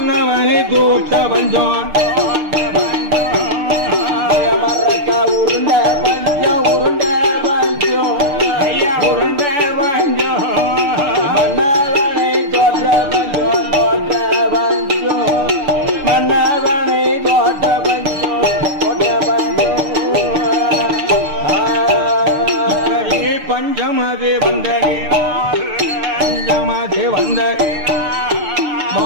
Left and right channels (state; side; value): late; left; 6.6 ms